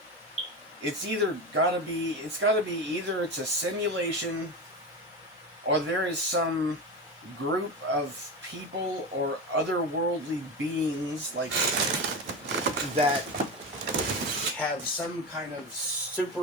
It's gotta be either it's a simulation or there is some group of people or otherworldly beings like that have some kind of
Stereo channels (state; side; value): normal; both; correlation 0.22